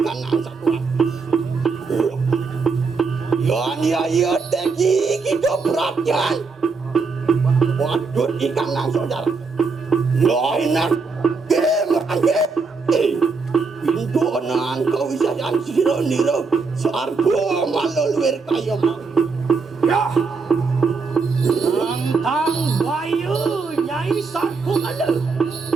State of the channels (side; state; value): left; quieter; 4.6 dB